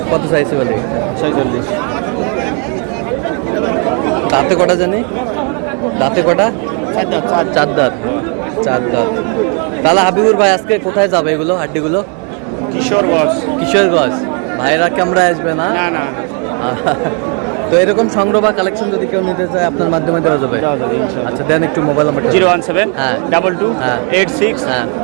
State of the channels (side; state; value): left; quieter; 37.7 dB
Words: কত চাইছে বলে? 46। দাঁতে কটা জানি? দাঁতে কটা? 4 দাঁত। 4 দাঁত। 4 দাঁত। তাহলে হাবিবুর ভাই আজকে কোথায় যাবে এগুলো হাড্ডিগুলো? কিশোরগঞ্জ। কিশোরগঞ্জ। ভাইরা ক্যামেরা আসবে না? না না তো এরকম সংগ্রহ বা কালেকশন যদি কেউ নিতে চায় আপনার মাধ্যমে দেওয়া যাবে? আচ্ছা দেন একটু মোবাইল নাম্বার। 017 হ্যাঁ 22 হ্যাঁ 86 হ্যাঁ